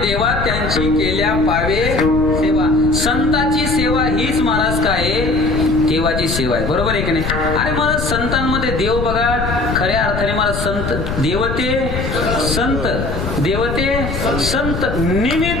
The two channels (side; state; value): left; noise; rumble, 4 dB below the sound